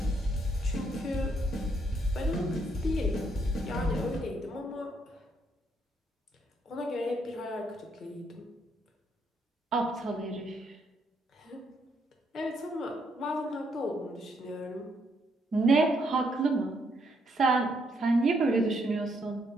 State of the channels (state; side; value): normal; both; correlation 0.74